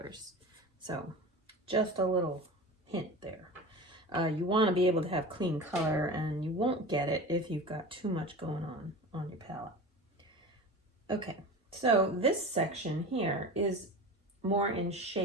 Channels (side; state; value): both; normal; correlation 0.32